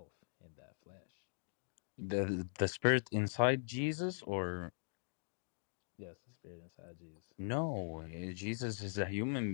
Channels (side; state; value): right; silent; digital silence